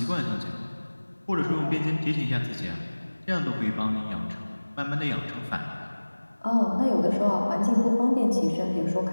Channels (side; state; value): both; inverted; correlation -1.00